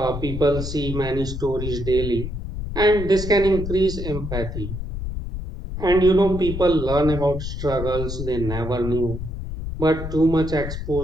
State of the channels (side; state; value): left; noise; rumble, 6 dB below the sound